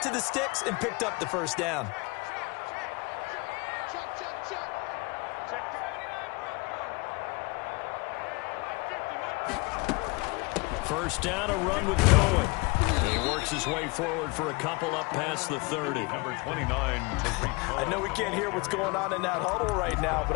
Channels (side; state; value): right; quieter; 27.2 dB